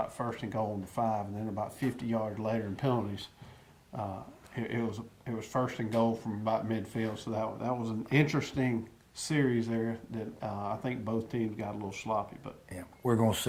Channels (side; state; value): both; identical; correlation 1.00